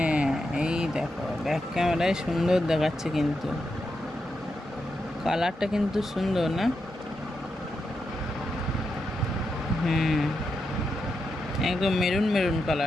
এই দেখো ব্যাক ক্যামেরায় সুন্দর দেখাচ্ছে, কিন্তু কালারটা কিন্তু সুন্দর না? একদম মেরুন মেরুন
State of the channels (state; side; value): normal; both; correlation 0.86